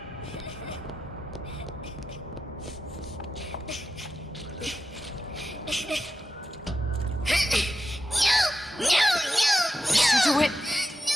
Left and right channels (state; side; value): normal; both; correlation 0.89